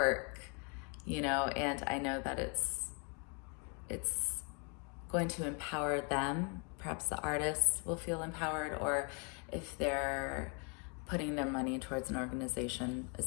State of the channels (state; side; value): quieter; right; 36.6 dB